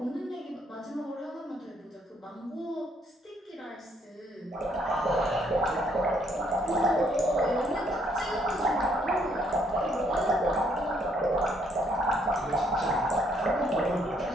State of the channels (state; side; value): normal; both; correlation 0.69